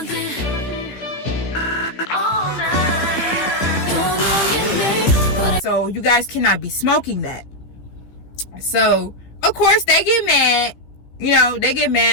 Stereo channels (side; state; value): right; late; 15 ms